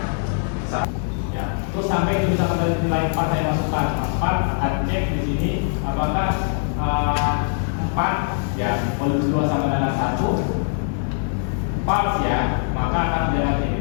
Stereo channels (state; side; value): silent; right; 64 dB below the other